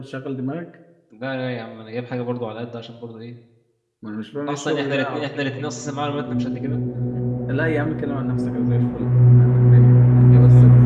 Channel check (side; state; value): both; identical; correlation 1.00